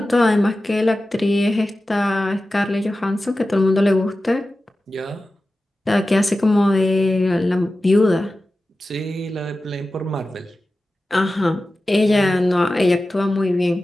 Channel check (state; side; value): normal; both; correlation 0.94